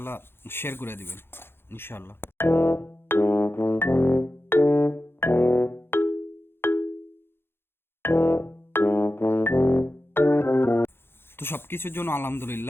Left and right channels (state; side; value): late; right; 0.11 ms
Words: শেয়ার করে দিবেন ইনশাল্লাহ। তো সব কিছুর জন্য